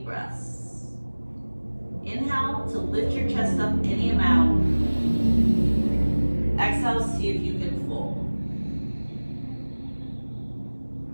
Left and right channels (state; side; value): inverted; both; correlation -1.00